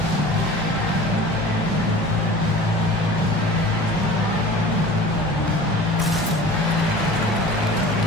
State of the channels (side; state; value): both; normal; correlation 0.41